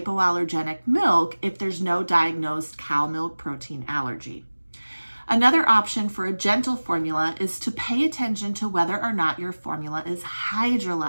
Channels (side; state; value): both; inverted; correlation -1.00